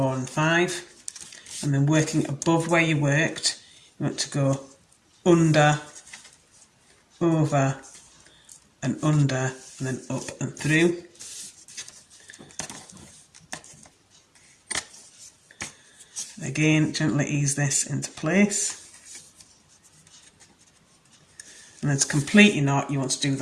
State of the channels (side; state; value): both; identical; correlation 1.00